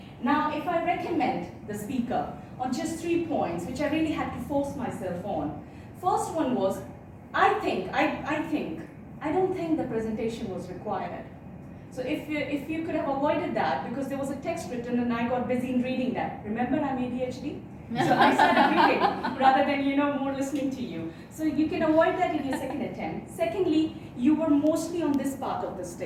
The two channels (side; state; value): both; identical; correlation 1.00